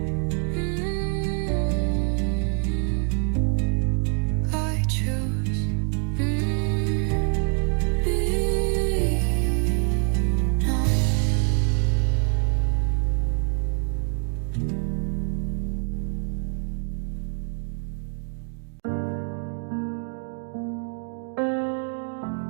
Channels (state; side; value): quieter; left; 37.9 dB